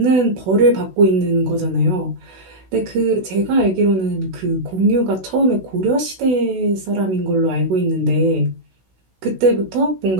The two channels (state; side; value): late; left; 16 ms